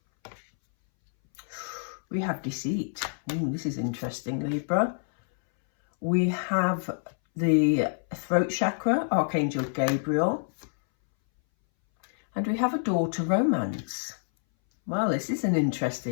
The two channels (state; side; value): silent; right; 60 dB below the other